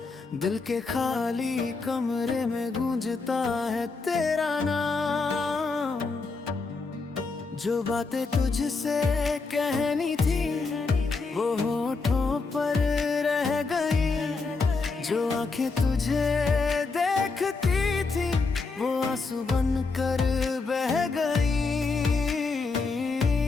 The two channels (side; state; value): right; quieter; 4.2 dB